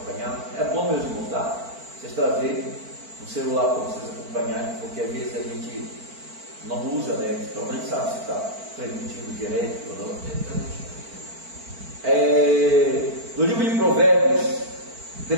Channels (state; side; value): late; left; 4.5 ms